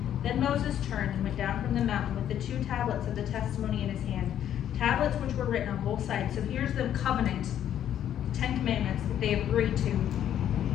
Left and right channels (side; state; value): right; quieter; 10.5 dB